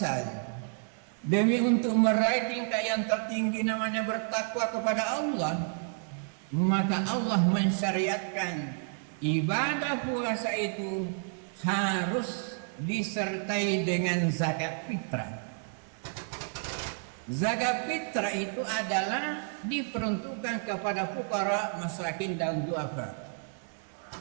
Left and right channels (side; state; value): left; silent; 57 dB below the other